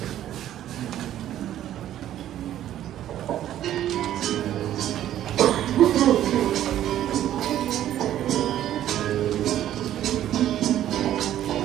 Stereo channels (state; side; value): quieter; left; 12.0 dB